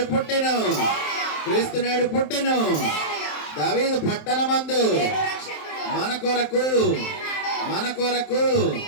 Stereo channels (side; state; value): right; late; 27 ms